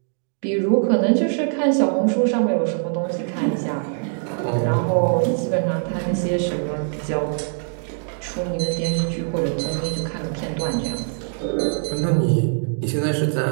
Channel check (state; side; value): silent; left; digital silence